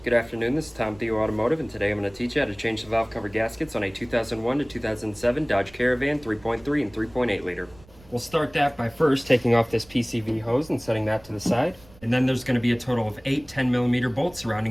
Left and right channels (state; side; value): noise; right; rumble, 24 dB below the sound